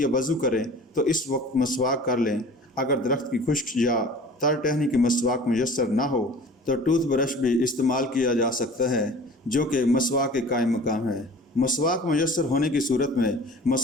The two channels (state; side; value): normal; both; correlation 0.43